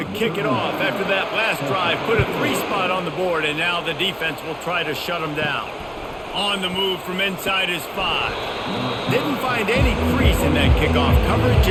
kick it off after that last drive. Put a 3 spot on the board, and now the defense will try to shut them down. On the move from inside his 5. Didn't find any crease in that kickoff coverage,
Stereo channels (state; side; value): identical; both; correlation 1.00